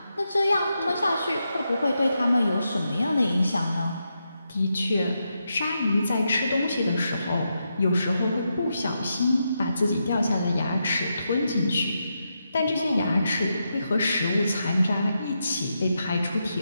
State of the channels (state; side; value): inverted; both; correlation -0.85